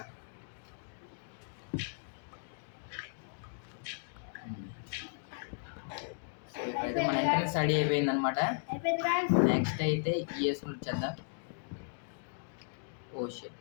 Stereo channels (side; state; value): right; silent; digital silence